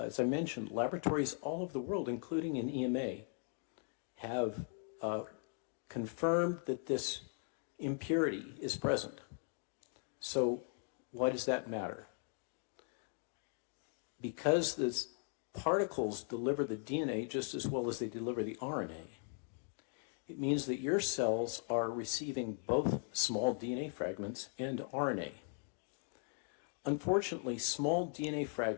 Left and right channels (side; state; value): right; silent; 52 dB below the other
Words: as I mentioned, laboratories all over the world, including in EMA, have confirmed that this impurity is present. So why does that matter? Because the particles deliver the DNA just as well as they deliver the RNA, it means that your cells are receiving both small DNA fragments and RNA. Unfortunately, small DNA